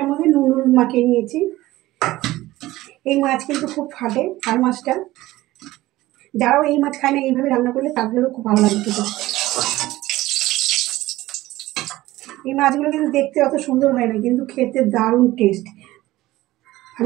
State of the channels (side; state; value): left; quieter; 17.1 dB